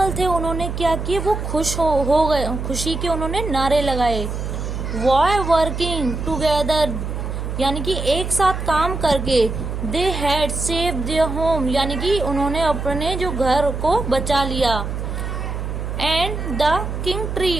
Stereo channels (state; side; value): noise; right; hum, 4 dB below the sound